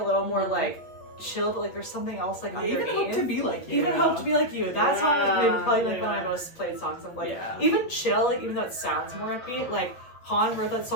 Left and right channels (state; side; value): late; right; 8.2 ms